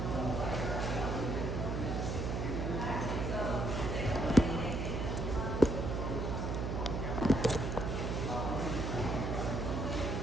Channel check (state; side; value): noise; right; hum, 1 dB below the sound